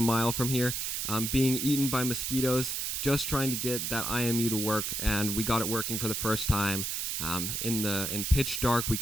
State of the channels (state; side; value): noise; right; hiss, 1 dB below the sound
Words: mile from here, being eaten by mosquitoes, just trying to get that IMU to work. And we got it working for the first time in pitch dark. We